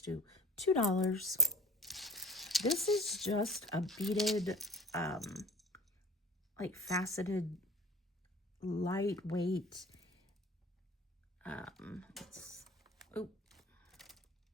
do $2. This is just a beaded, like faceted, lightweight, I'm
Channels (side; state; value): both; normal; correlation 0.43